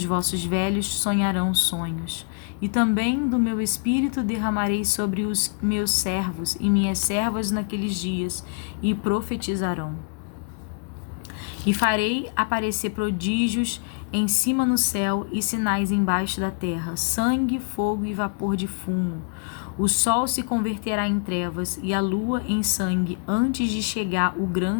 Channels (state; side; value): quieter; right; 38.9 dB